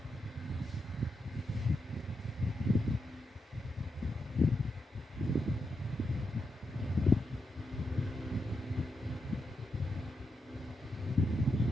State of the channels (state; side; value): normal; both; correlation 0.85